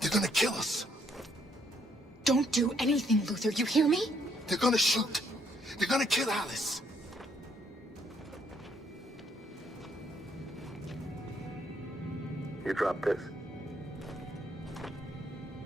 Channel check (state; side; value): normal; both; correlation 0.71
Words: gonna kill us. Don't do anything, Luther. You hear me? They're gonna shoot. They're gonna kill Alice. You drop this.